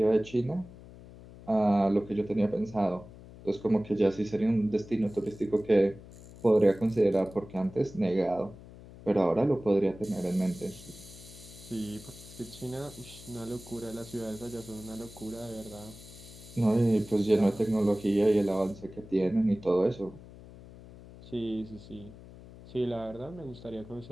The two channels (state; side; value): noise; left; hum, 18 dB below the sound